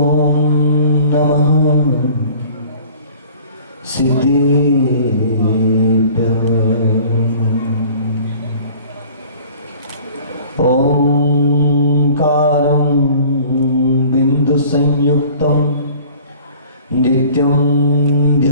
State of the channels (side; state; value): both; inverted; correlation -0.48